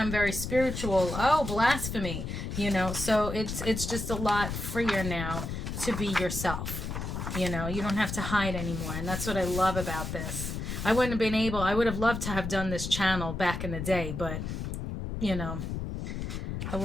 very spiritual. Oh, blasphemy. You know, so it's just a lot freer now to be yourself. You know, you don't have to hide anymore. And that's what I love about this. I would have loved to have done this channel back in the day, but, you know, I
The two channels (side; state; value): left; noise; rumble, 5 dB below the sound